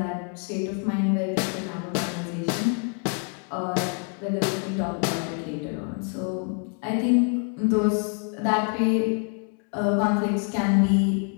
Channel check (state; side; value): quieter; right; 39.1 dB